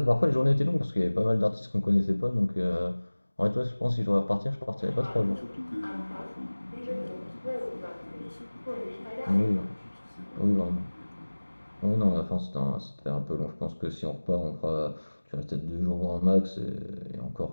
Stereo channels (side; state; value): both; inverted; correlation -1.00